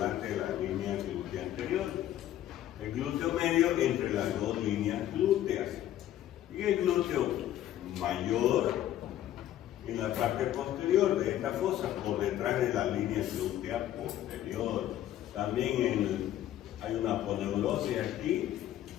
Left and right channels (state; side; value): quieter; right; 12.4 dB